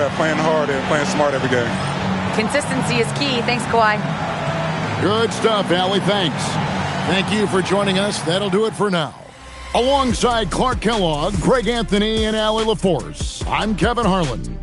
playing hard and playing smart every game. Consistency is key. Thanks, Kawhi. Good stuff, Allie. Thanks. Thank you for joining us. That'll do it for now. Alongside Clark Kellogg, Greg Anthony, and Allie LaForce, I'm Kevin Harlan.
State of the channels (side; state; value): both; identical; correlation 1.00